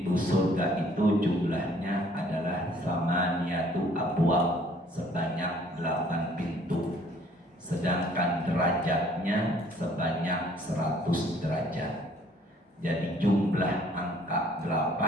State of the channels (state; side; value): normal; both; correlation 0.58